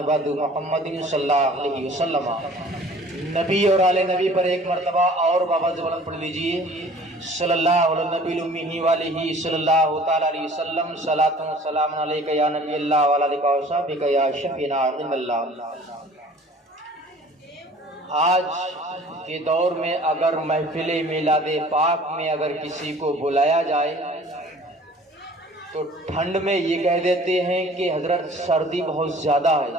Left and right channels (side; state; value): both; normal; correlation 0.49